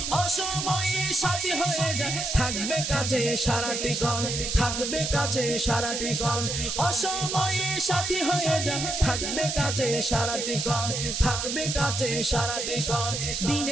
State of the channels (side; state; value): right; noise; hiss, 2 dB below the sound